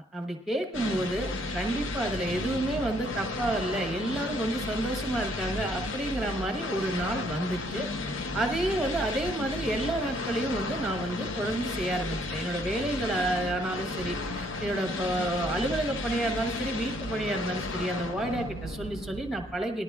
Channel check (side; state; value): both; normal; correlation 0.66